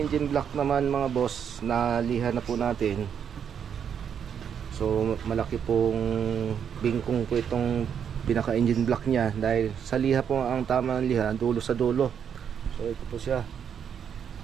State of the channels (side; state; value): left; quieter; 8.0 dB